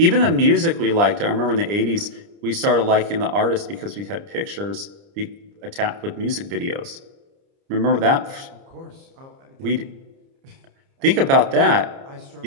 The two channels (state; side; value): late; left; 30 ms